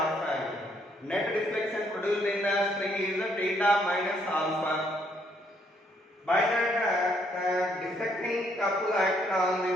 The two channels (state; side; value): normal; both; correlation 0.70